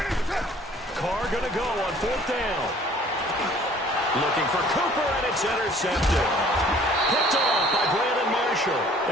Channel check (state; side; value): normal; both; correlation 0.54